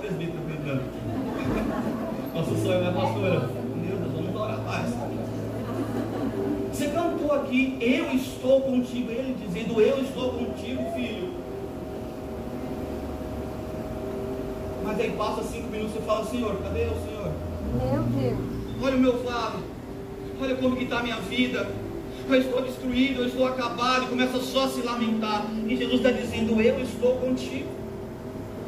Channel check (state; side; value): identical; both; correlation 1.00